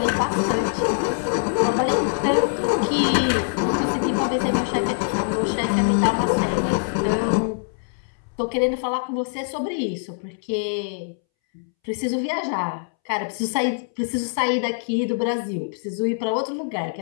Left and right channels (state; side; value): silent; right; 63 dB below the other